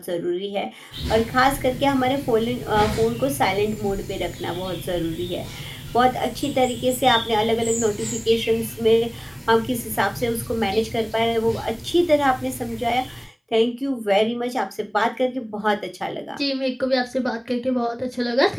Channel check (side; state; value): both; identical; correlation 1.00